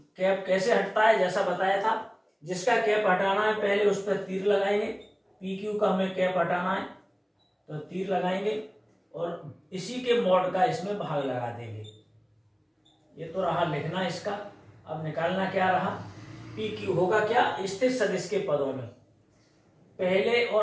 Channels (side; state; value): both; identical; correlation 1.00